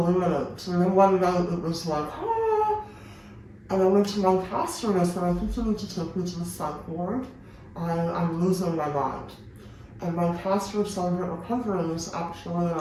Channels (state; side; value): identical; both; correlation 1.00